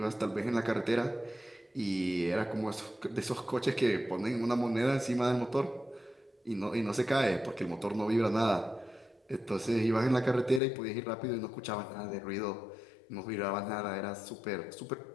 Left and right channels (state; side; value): drops out; right; at 10.6 s